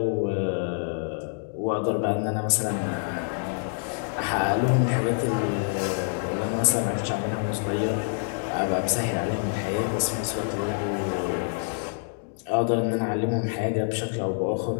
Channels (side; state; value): right; silent; digital silence